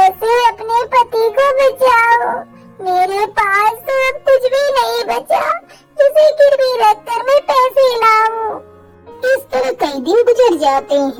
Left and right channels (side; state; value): both; identical; correlation 1.00